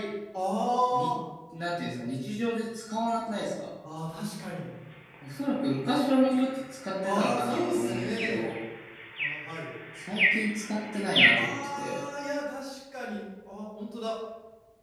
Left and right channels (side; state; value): both; identical; correlation 1.00